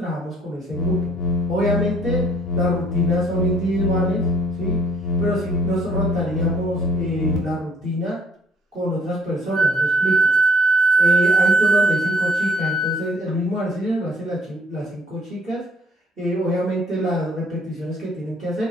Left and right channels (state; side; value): normal; both; correlation 0.62